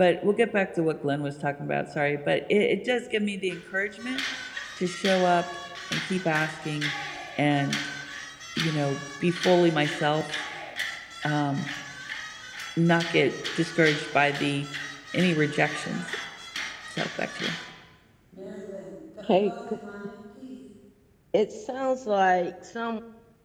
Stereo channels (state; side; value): identical; both; correlation 1.00